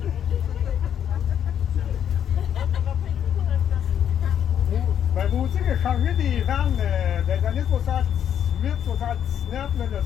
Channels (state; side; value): quieter; right; 9.3 dB